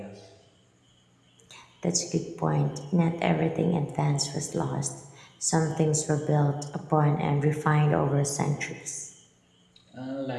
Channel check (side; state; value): both; identical; correlation 1.00